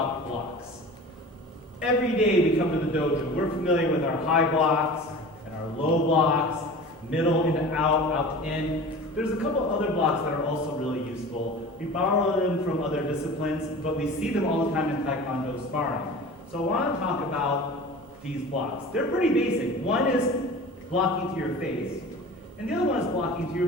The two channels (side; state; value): both; normal; correlation 0.37